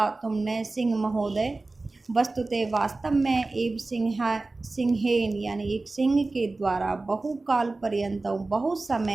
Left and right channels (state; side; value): quieter; left; 3.3 dB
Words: तुमने सिंह महोदय। वस्तुतः वास्तव में एव सिंहेन, यानी एक सिंह के द्वारा बहुकाल पर्यंत, बहुत